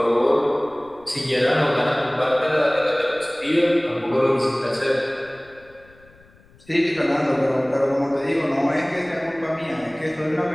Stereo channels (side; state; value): left; noise; rumble, 28 dB below the sound